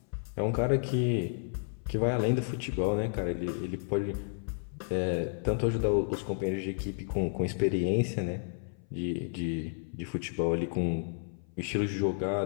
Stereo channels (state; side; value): silent; right; 57 dB below the other